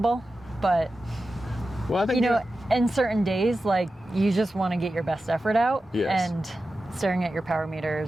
But well, I think in certain days, you just want to get your best effort out. Yes. And staring at your power meter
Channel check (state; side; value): normal; both; correlation 0.93